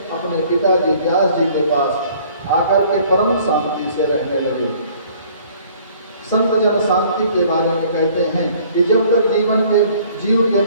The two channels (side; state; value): both; inverted; correlation -0.56